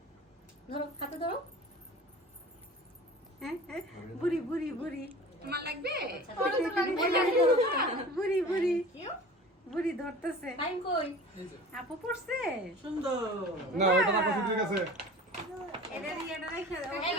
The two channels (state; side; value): normal; both; correlation 0.40